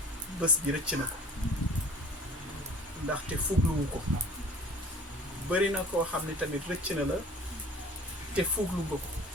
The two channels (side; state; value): both; normal; correlation 0.48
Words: bés bi rëcc na ko ndaxte fugluwu ko bëri na koo xam ne tamit rëcc na la te fuglu nga ko